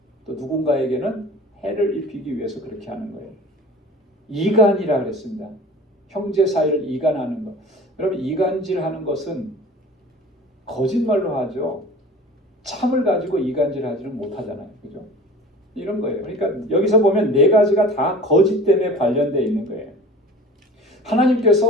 또 누군가에게는 해를 입히기 위해서 그렇게 하는 거예요. 이간이라 그랬습니다. 형제 사이를 이간하는 것. 여러분, 이간질하는 것은 거짓말로 하죠. 참을 가지고 이간질하지는 못하잖아요. 그죠? 이런 거예요. 그러니까 여기서 보면 4가지가 다 거짓 때문에 관련되어 있는 거예요.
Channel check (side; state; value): both; normal; correlation 0.41